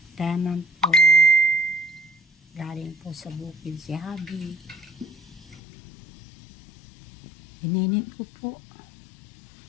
tenant po. Galing po sa bukid si Habi. Ininit ko po.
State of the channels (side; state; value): right; drops out; at 5.6 s